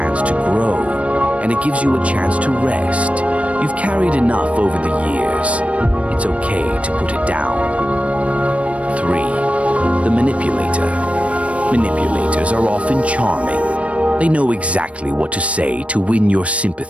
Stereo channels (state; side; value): late; left; 0.063 ms